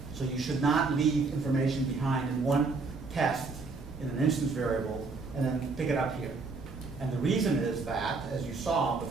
So you should not leave information behind in one test in an instance variable and then pick it up here. And the reason is that, as you saw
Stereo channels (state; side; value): quieter; left; 4.1 dB